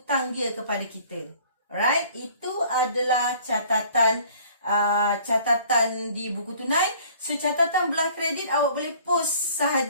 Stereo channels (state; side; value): inverted; both; correlation -0.53